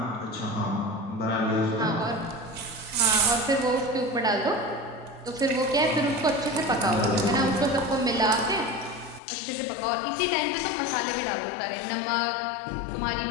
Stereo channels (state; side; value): drops out; right; at 9.2 s